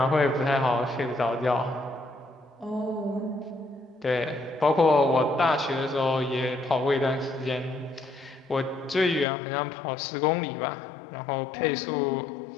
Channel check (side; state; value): right; drops out; at 9.2 s